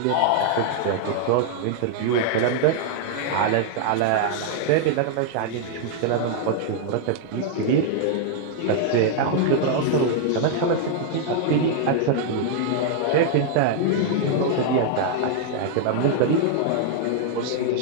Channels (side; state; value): both; different; correlation -0.01